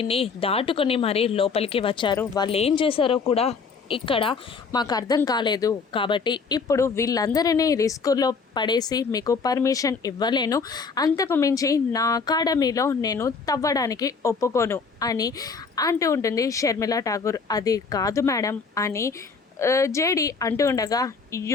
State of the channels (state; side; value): quieter; right; 5.0 dB